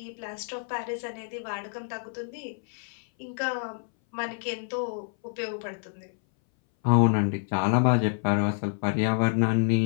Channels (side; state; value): right; silent; 58 dB below the other